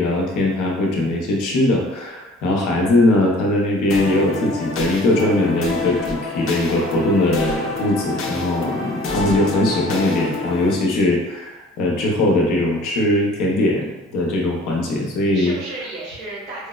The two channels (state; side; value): normal; both; correlation 0.51